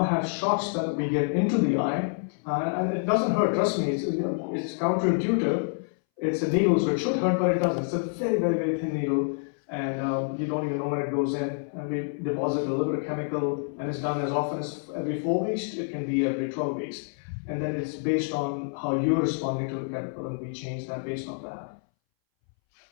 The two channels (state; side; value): silent; right; 60 dB below the other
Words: have shots that we get into the eye, and it doesn't hurt, trust me, it's counterintuitive. It's a needle, so it should hurt, but it doesn't. It's a very, very, very thin needle, and you don't even know when it goes in. And we deposit a little bit of chemical, and it's done as often as every 4 weeks, it can be every 12 weeks. And then it's based on how you're responding to the chemical, and we change that based on that.